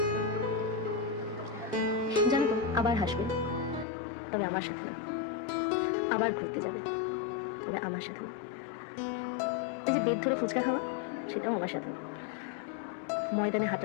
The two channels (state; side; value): drops out; right; at 3.9 s